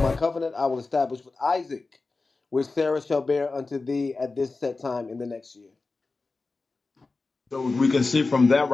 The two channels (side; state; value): right; quieter; 3.7 dB